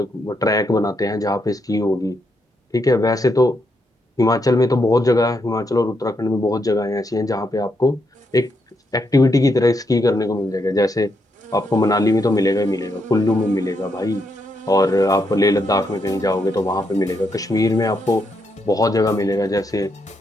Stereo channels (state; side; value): normal; both; correlation 0.80